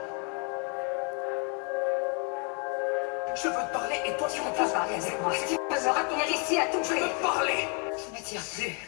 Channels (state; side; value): quieter; right; 36.6 dB